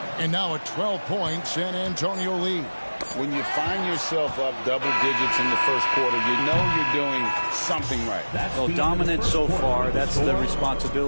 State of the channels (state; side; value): inverted; both; correlation -1.00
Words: And now a 12-point San Antonio lead. When you find yourself up double digits in the first quarter, you know you're doing something right. Well, dominant so far. That's the